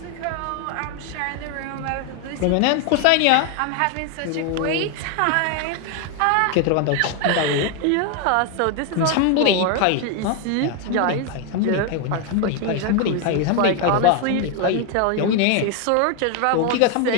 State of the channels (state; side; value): different; both; correlation 0.01